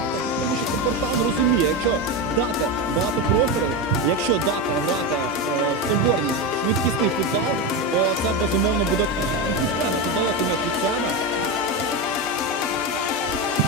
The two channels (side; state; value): both; normal; correlation 0.15